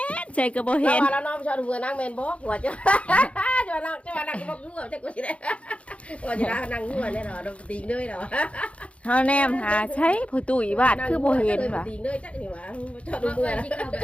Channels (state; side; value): late; right; 0.062 ms